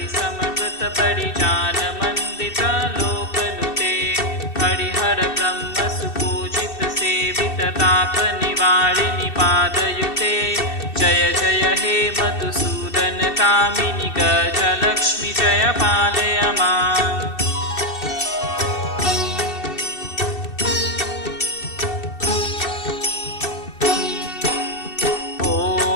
समवृत परिजान मंदित लोकनुते हरिहर ब्रह्म सुपूजित सेवित ताप निवारिणि पादयुते जय जय हे मधुसूदन कामिनि गजलक्ष्मी जय पालय माम्।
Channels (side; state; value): right; late; 2.7 ms